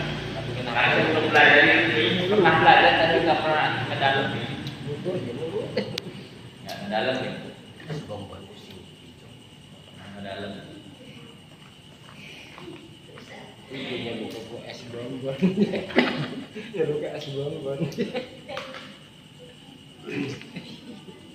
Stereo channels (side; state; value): both; identical; correlation 1.00